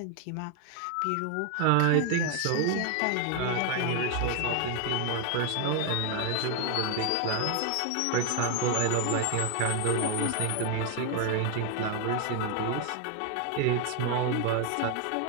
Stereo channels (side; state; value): both; different; correlation 0.01